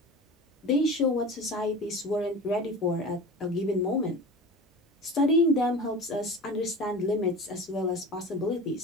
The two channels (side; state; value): both; normal; correlation 0.35